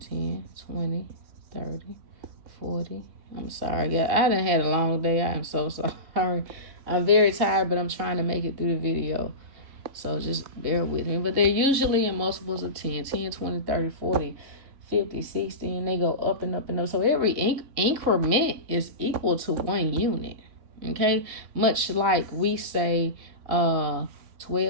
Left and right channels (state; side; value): late; left; 3.2 ms